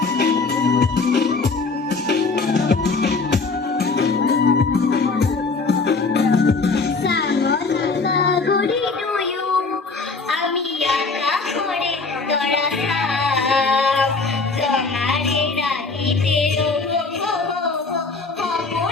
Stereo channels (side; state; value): right; quieter; 4.1 dB